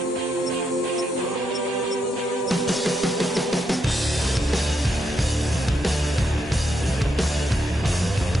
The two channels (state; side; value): normal; both; correlation 0.80